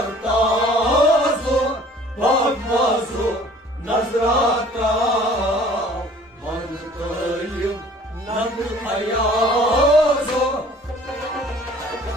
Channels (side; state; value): both; normal; correlation 0.51